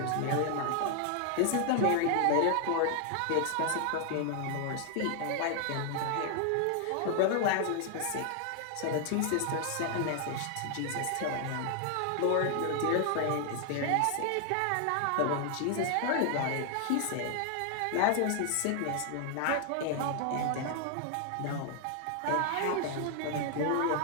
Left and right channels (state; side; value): different; both; correlation 0.00